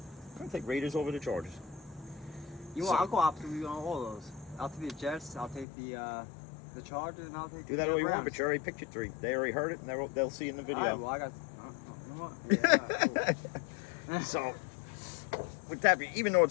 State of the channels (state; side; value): drops out; right; at 5.7 s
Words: I'm gonna take Raiders over the Chargers. I'll go opposite with you on all those. I'll take the Jets. I'll take the Chargers, and I'll take do that all you want, but you already picked your 3. They already heard it, and they'll see in the video. All right, well, I got. You know what? Yeah, cool. So, with that, even though